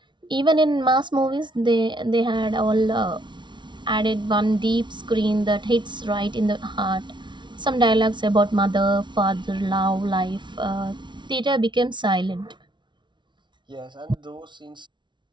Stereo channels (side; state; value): left; late; 0.23 ms